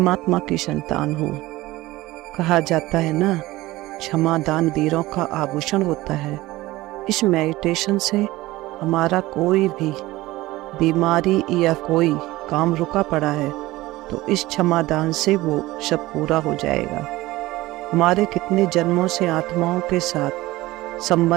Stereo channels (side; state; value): left; quieter; 18.4 dB